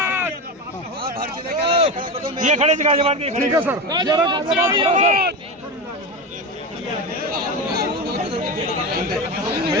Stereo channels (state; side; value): normal; both; correlation 0.21